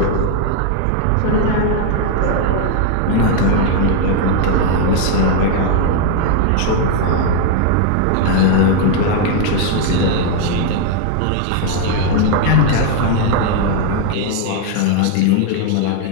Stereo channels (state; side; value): different; both; correlation 0.01